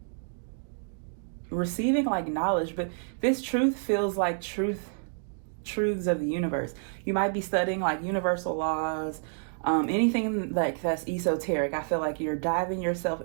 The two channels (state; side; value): silent; left; digital silence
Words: receiving like knowledge, but this truth feels like truths of the universe. You might be studying like universal laws, anything like that's esoteric. I feel like you're diving yourself